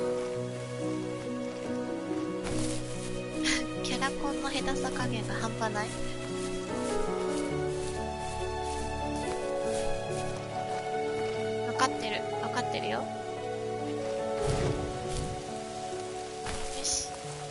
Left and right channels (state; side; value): identical; both; correlation 1.00